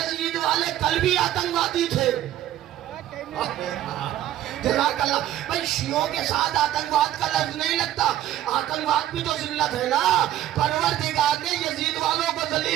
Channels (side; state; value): left; quieter; 12.9 dB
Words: والے کل بھی آتنکوادی تھے. جزاک اللہ. بھئی شیعوں کے ساتھ آتنکواد کا لفظ نہیں لگتا, آتنکواد بھی تو ذلت ہے نا. پروردگار نے یزید والوں کو